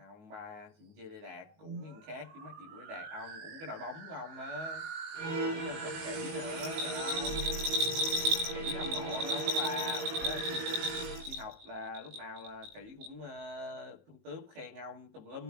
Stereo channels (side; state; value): left; late; 19 ms